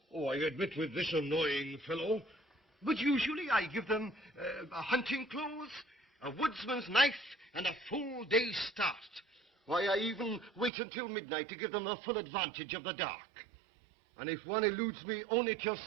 Oh, I admit with this annoying fellow. But usually I give them hunting clothes, a woodsman's knife, and a full day's start. Why, I even wait until midnight to give them the full advantage of the dark. And if one eludes me only till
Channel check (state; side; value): drops out; left; at 10.7 s